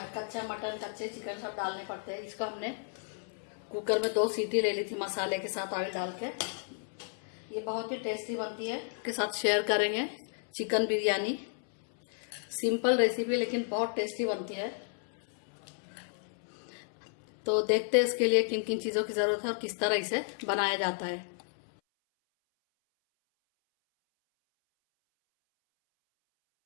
मटन, कच्चे चिकन सब डालने पड़ते हैं। इसको हमने कुकर में 2 सीटी ले ली थी मसाले के साथ ऑयल डाल के। ये बहुत ही टेस्टी बनती है, के साथ शेयर करेंगे चिकन बिरयानी। सिंपल रेसिपी लेकिन बहुत टेस्टी बनती है। तो देखते हैं इसके लिए किन किन चीज़ों की ज़रूरत है और किस तरह इसे बनाया जाता है।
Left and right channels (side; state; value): right; silent; 56 dB below the other